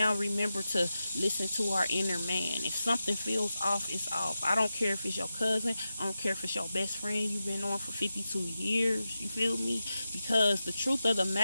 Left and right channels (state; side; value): inverted; both; correlation -0.91